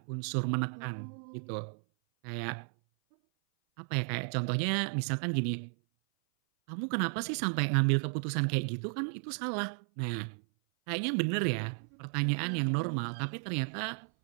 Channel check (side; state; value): left; silent; 55 dB below the other